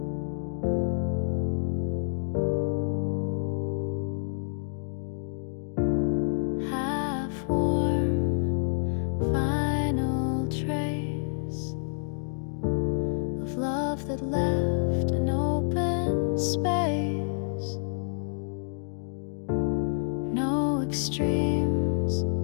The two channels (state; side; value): silent; right; digital silence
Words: That left an open space, no extremes,